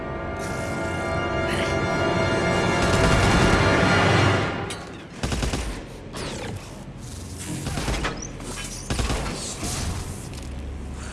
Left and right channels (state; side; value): identical; both; correlation 1.00